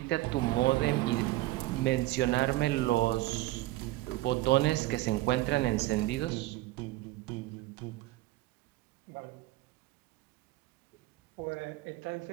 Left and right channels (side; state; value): left; quieter; 17.4 dB